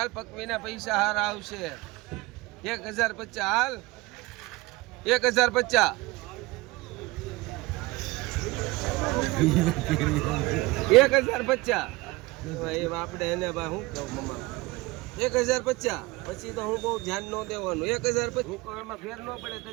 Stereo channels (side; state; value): left; quieter; 21.9 dB